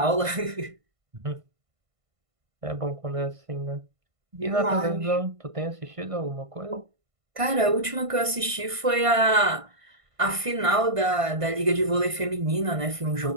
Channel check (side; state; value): left; late; 1.5 ms